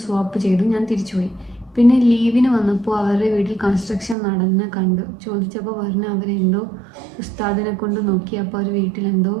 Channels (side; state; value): left; drops out; at 4.2 s